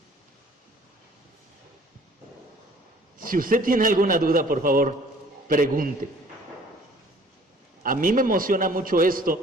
Si usted tiene alguna duda, por favor, pregunte. A mí me emociona mucho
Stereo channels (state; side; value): normal; both; correlation 0.54